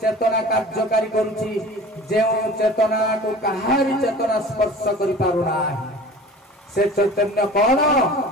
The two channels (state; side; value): normal; both; correlation 0.41